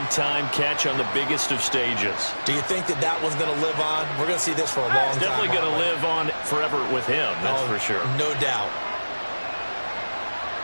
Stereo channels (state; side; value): inverted; both; correlation -1.00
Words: catch on the biggest of stages. Do you think that that one's going to live on? We're going to see this for a long time. It's definitely going to live on forever with him, that's for sure. No doubt.